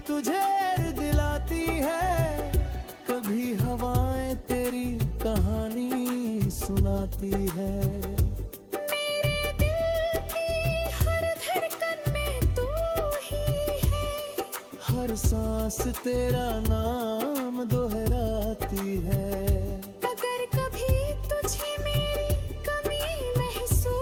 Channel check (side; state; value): both; identical; correlation 1.00